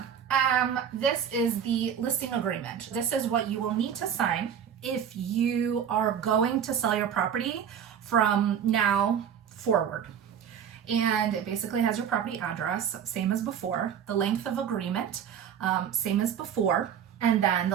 this is the listing agreement. This is what you will need to sign if you are going to sell your property from now forward. And it basically has your property address, same as before, the length of agreement, same as before, and then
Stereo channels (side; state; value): left; quieter; 8.5 dB